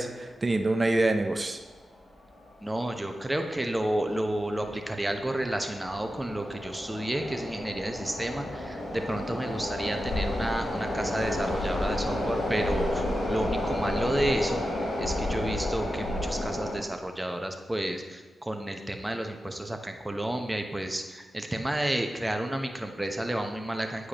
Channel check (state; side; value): normal; both; correlation 0.92